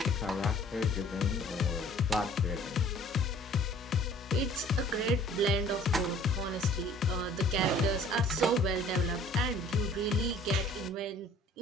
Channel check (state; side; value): normal; both; correlation 0.53